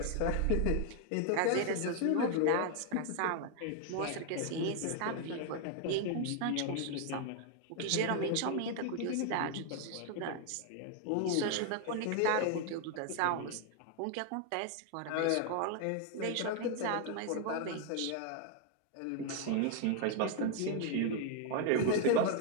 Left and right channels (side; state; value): both; different; correlation 0.00